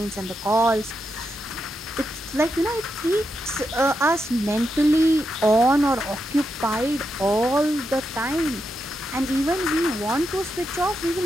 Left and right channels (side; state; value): both; normal; correlation 0.85